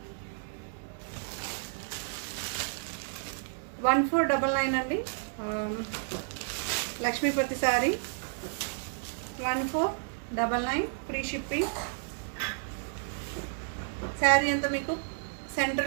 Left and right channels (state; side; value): silent; left; digital silence